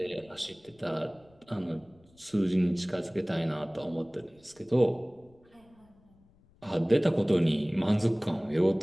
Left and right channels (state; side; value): noise; left; rumble, 30 dB below the sound